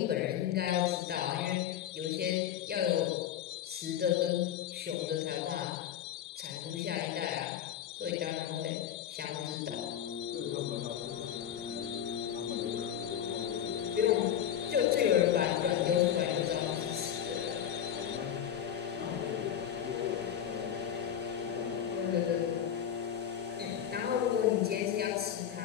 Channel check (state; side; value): quieter; right; 9.8 dB